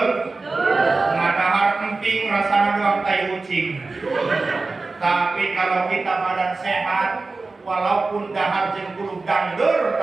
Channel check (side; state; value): left; quieter; 3.7 dB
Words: Ngadahar emping rasanya doang tai kucing. Tapi kalau kita badan sehat, walaupun dahar jeung kudu dangdur,